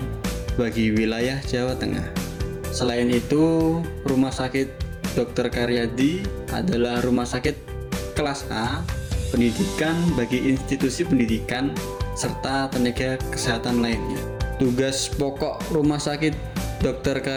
bagi wilayah Jawa Tengah. Selain itu, Rumah Sakit Dr. Karyadi adalah rumah sakit kelas A pendidikan bagi institusi pendidikan serta tenaga kesehatan lainnya. Tugas pokok Rumah Sakit Dr.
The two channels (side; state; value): both; identical; correlation 1.00